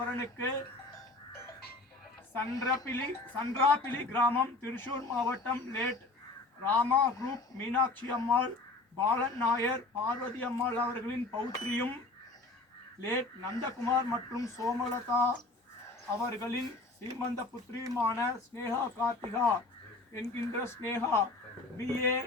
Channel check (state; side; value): quieter; right; 3.2 dB